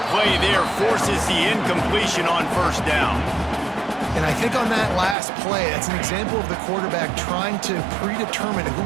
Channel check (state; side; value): drops out; left; at 5.2 s